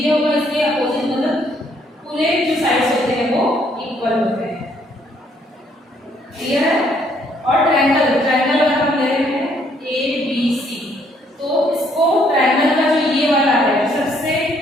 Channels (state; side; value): normal; both; correlation 0.67